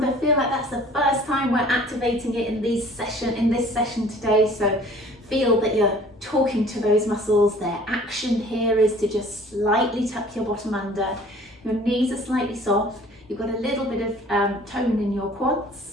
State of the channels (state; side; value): normal; both; correlation 0.50